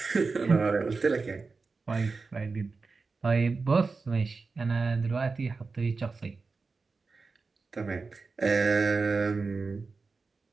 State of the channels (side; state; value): left; quieter; 4.2 dB